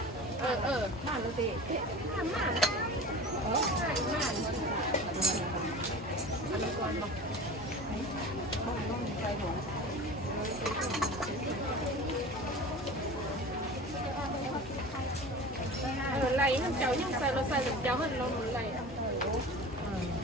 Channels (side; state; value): both; normal; correlation 0.36